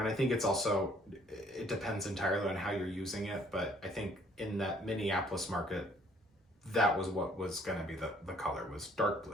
I think it's also, it depends entirely on how you're using it, but I think in that Minneapolis market, that was what was gonna be the color, was dark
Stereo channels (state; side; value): normal; both; correlation 0.61